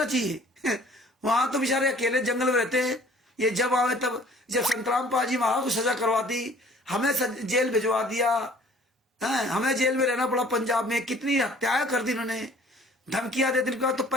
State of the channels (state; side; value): normal; both; correlation 0.53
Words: चाहिए? वहां तो बेचारे अकेले जंगल में रहते हैं। ये जब आवे तब, जब संत रामपाल जी महाराज को सजा करवा दी, हमें जेल भिजवा दिया, हमें जेल में रहना पड़ा। पंजाब में कितनी हत्याएं कर दी इन्होंने, धमकियां दे दी। इनका तो